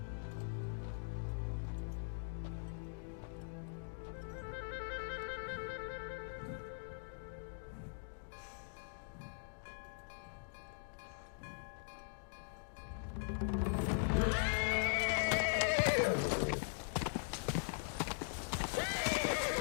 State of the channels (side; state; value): right; silent; digital silence